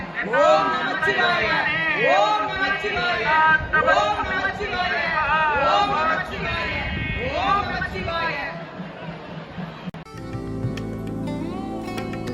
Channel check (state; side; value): identical; both; correlation 1.00